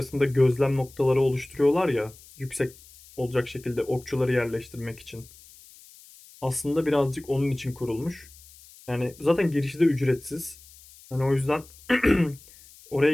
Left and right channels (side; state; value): left; noise; hiss, 23 dB below the sound